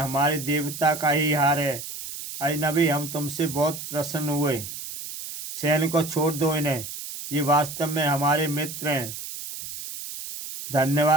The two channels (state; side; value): noise; right; hiss, 9 dB below the sound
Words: हमारे देवता का ही हार है। अजनबी, हम तुमसे बहुत प्रसन्न हुए। सैनिकों, छोड़ दो इन्हें, ये वास्तव में हमारे मित्र हैं।